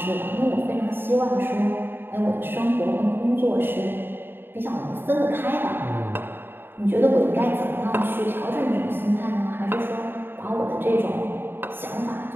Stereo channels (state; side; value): late; left; 0.10 ms